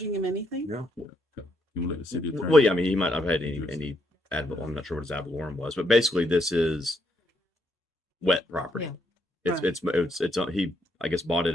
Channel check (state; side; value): normal; both; correlation 0.76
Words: him anything? No. You want to let the city attorney? Well, yeah, I mean, he might have had any I'm not sure what his ad valorem was, but basically this is wet property. Yeah. It's he, I guess, bought it